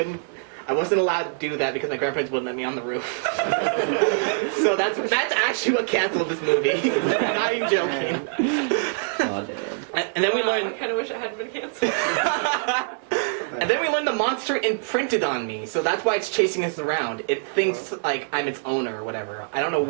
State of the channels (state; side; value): silent; left; digital silence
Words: wasn't allowed to do that because my grandparents wouldn't let me on the roof. So that's actually what canceled this movie. I'm not even joking. Oh damn. And then we Wow, I learned. kind of wish it hadn't been canceled. And then we learned the monster imprinted on me, so that's why it's chasing us around. It thinks like I'm its owner or whatever. I don't know